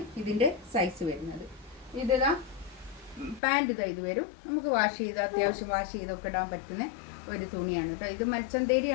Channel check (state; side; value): drops out; right; at 3.4 s